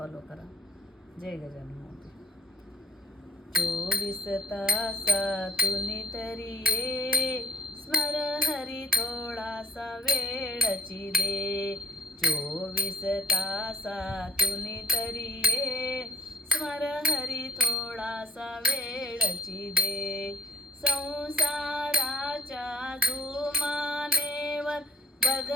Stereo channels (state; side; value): normal; both; correlation 0.64